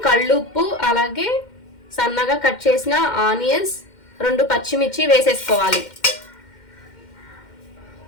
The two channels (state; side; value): late; right; 2.1 ms